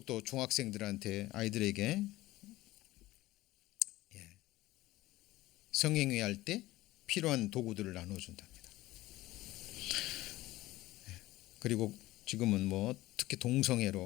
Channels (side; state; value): right; quieter; 17.5 dB